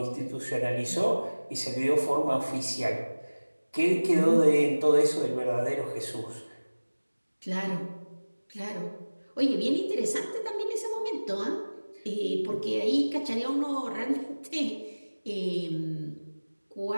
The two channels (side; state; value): both; inverted; correlation -1.00